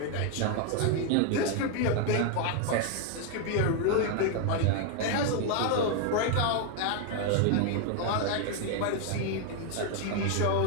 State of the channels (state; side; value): different; both; correlation 0.01